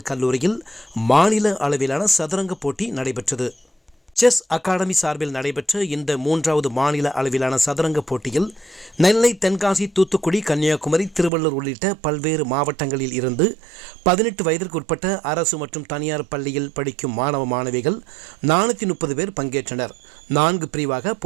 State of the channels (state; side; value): drops out; left; at 11.3 s